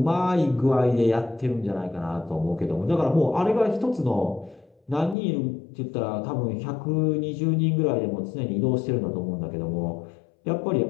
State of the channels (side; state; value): right; drops out; at 5.2 s